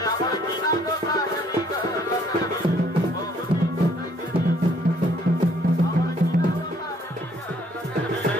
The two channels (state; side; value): normal; both; correlation 0.63